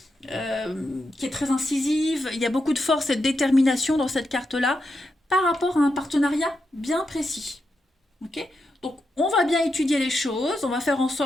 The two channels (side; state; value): both; normal; correlation 0.85